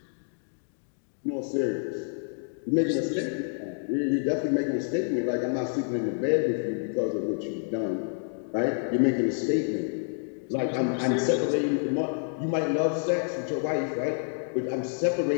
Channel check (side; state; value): right; silent; digital silence